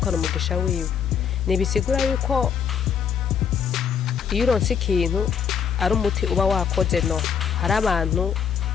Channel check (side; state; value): right; quieter; 7.5 dB